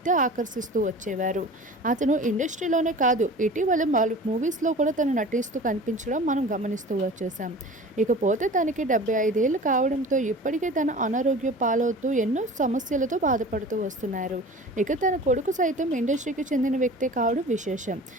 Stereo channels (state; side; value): normal; both; correlation 0.39